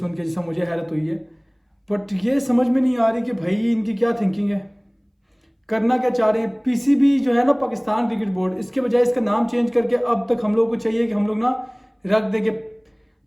के, जैसा मुझे हैरत हुई है। बट ये समझ में नहीं आ रही कि भाई इनकी क्या थिंकिंग है, करना क्या चाह रहे हैं। पीसीबी जो है ना, पाकिस्तान क्रिकेट बोर्ड, इसके बजाय इसका नाम चेंज करके अब तक हम लोग को चाहिए कि हम लोग ना रख देंगे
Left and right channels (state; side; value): identical; both; correlation 1.00